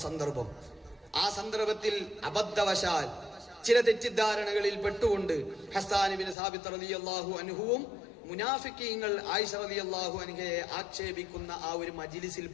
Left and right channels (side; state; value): right; drops out; at 6.4 s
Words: സന്ദർഭം. ആ സന്ദർഭത്തിൽ അബദ്ധവശാൽ ചില തെറ്റിദ്ധാരണകളിൽ പെട്ടുകൊണ്ട് ഹസ്സാൻ ഇബ്നു സാബിത്ത് റളിയല്ലാഹു അൻഹുവും മുനാഫിക്കീങ്ങൾ ആയിഷ റളിയല്ലാഹു അൻഹയെ ആക്ഷേപിക്കുന്ന ആ ഒരു മജ്ലിസിൽ